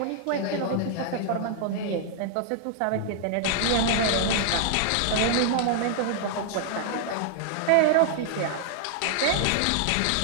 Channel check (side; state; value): both; different; correlation -0.01